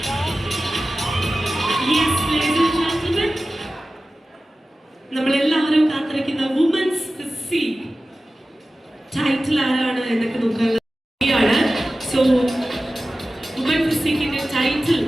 Yes, ladies and gentlemen, നമ്മളെല്ലാവരും കാത്തിരിക്കുന്ന വുമൻസ് ഫിസിക് ടൈറ്റിൽ ആരാണ് എന്നൊക്കെ നോക്കാനുള്ള സോ വുമൻ ഫിസിക്കിന്റെ ടൈറ്റിൽ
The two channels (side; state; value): both; normal; correlation 0.95